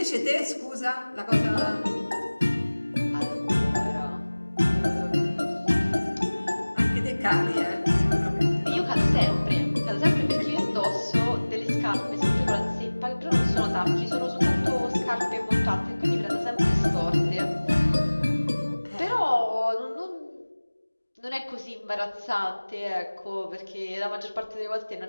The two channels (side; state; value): both; inverted; correlation -1.00